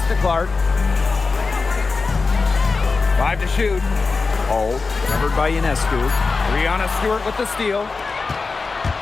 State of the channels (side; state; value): right; quieter; 4.2 dB